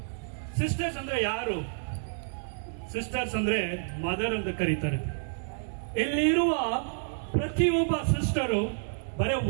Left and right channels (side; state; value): left; silent; digital silence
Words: Sisters andre yaru? Sisters andre mother ಅಂತ ಕರೀತಾರೆ. ಇಲ್ಲಿರುವ ಪ್ರತಿಯೊಬ್ಬ sister ಬರೀ